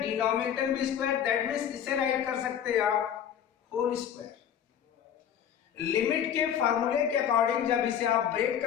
में भी स्क्वायर, दैट मीन्स इसे राइट कर सकते हैं आप होल स्क्वायर। लिमिट के फार्मूले के अकॉर्डिंग जब इसे आप ब्रेक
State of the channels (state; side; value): quieter; right; 9.2 dB